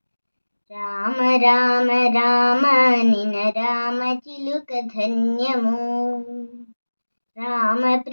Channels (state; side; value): inverted; both; correlation -1.00